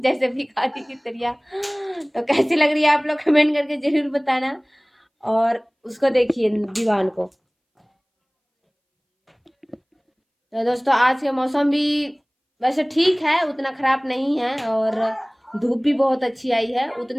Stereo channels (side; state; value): both; identical; correlation 1.00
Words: जैसे भिखारी की तरह। तो कैसी लग रही है आप लोग कमेंट करके जरूर बताना। और उसको देखिए दीवान को। तो दोस्तों आज का मौसम भी वैसे ठीक है, उतना खराब नहीं है और धूप भी बहुत अच्छी आई है,